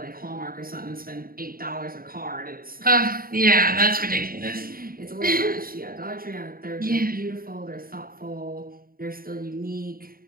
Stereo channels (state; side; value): late; left; 0.42 ms